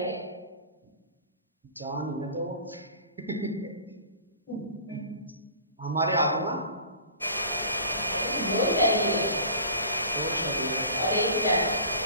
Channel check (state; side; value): inverted; both; correlation -0.44